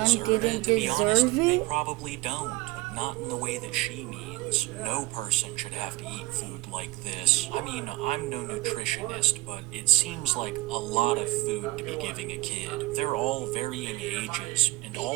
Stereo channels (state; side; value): quieter; left; 20.6 dB